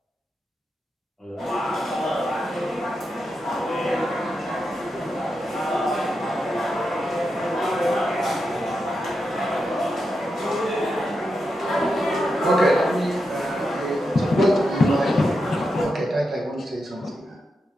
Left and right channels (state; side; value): normal; both; correlation 0.87